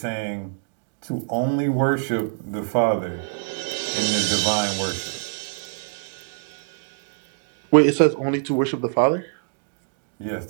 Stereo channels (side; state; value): left; silent; digital silence